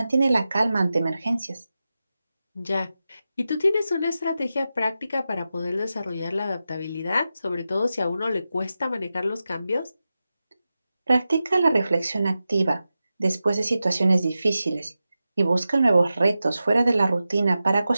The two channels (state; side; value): inverted; both; correlation -0.92